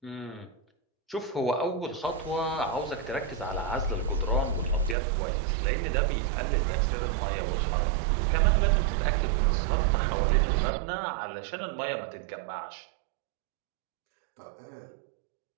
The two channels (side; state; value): left; drops out; at 5.0 s